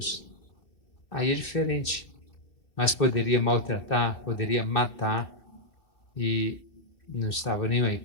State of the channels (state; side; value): late; right; 2.7 ms